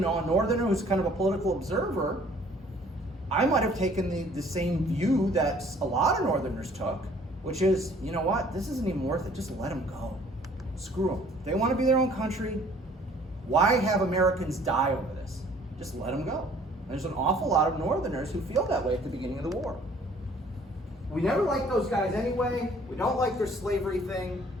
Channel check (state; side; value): normal; both; correlation 0.56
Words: who's kind of a political observer, I might have taken the same view that a lot of Northerners took, which is, you know what, this isn't even worth it, just let them go. Screw them. They want to be their own country. Why have Americans die over this? Just let them go. And there's an awful lot of Northerners who feel that way at the beginning of the war. We never liked those guys anyway. We don't like their slavery thing.